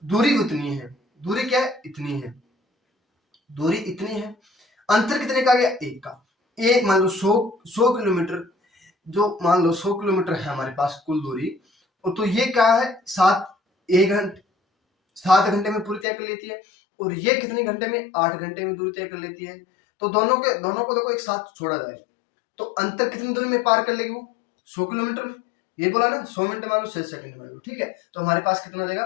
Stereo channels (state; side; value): drops out; right; at 16.1 s